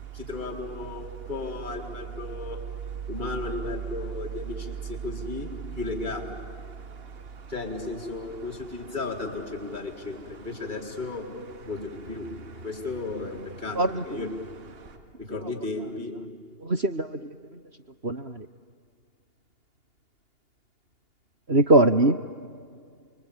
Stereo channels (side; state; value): left; late; 2.8 ms